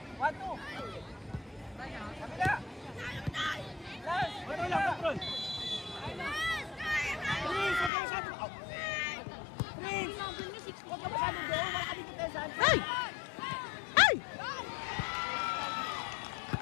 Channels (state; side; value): drops out; right; at 7.9 s